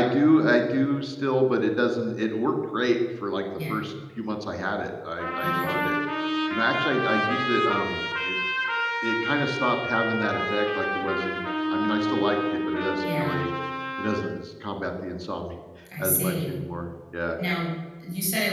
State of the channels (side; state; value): both; identical; correlation 1.00